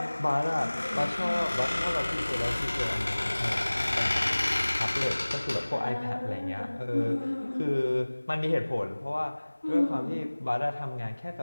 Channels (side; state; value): both; inverted; correlation -1.00